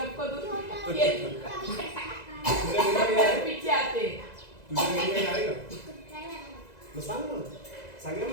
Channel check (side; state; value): right; late; 2.0 ms